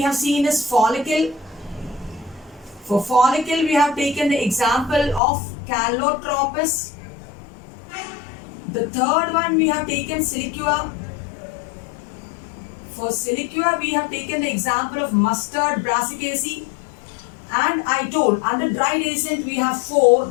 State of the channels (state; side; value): drops out; right; at 5.2 s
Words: have seen is follicle. For follicle, we have taken the example of Calotropis. The third one we have taken siliqua. For siliqua, we have taken the example of mustard, Brassicaceae. And I told, under dry dehiscent, we have 4.